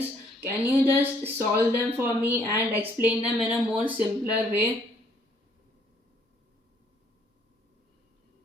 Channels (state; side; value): normal; both; correlation 0.64